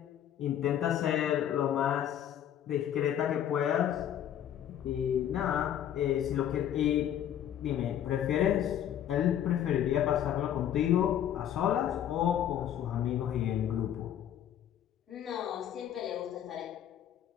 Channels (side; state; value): right; quieter; 10.5 dB